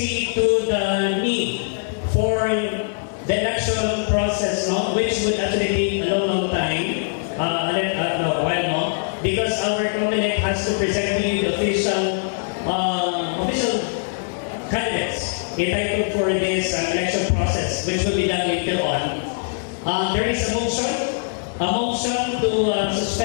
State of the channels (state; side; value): silent; right; digital silence